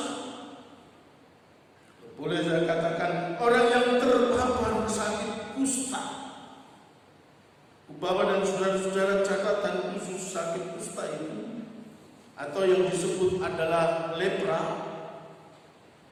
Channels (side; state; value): both; identical; correlation 1.00